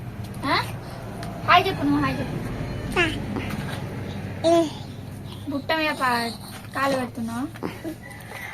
హాయ్ చెప్పు. నువ్వు హాయ్ చెప్పు. బుట్ట మీద కాలు పెడుతున్నావు.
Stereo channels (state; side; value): identical; both; correlation 1.00